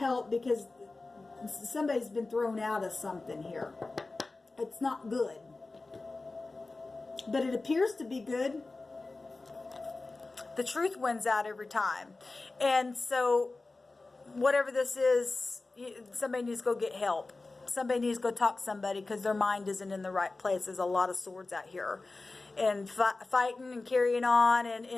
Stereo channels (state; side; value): quieter; right; 3.4 dB